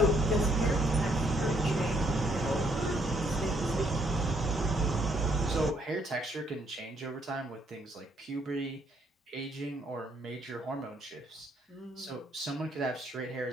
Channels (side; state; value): both; normal; correlation 0.70